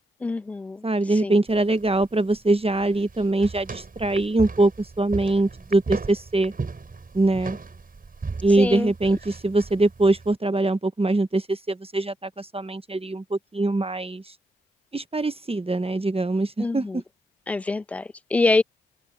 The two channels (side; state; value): both; normal; correlation 0.83